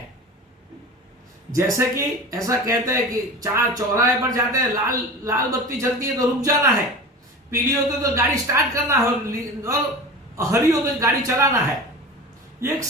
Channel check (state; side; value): normal; both; correlation 0.33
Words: जैसे कि ऐसा कहते हैं कि चार चौराहे पर जाते हैं, लाल बत्ती चलती है तो रुक जाना है, पीली होती तो गाड़ी स्टार्ट करना है, और हरी हो तो गाड़ी चलाना है। ये एक